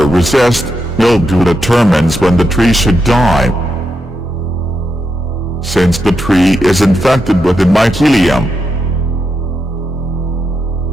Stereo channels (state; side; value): normal; both; correlation 0.85